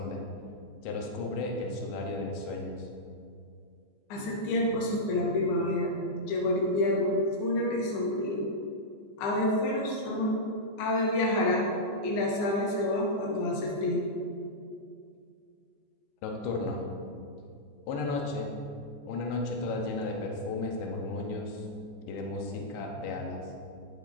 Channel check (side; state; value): right; late; 14 ms